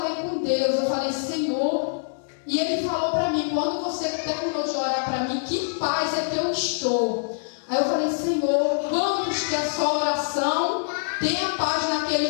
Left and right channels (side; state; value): right; silent; digital silence